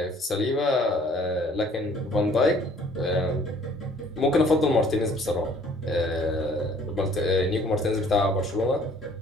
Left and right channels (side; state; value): both; normal; correlation 0.57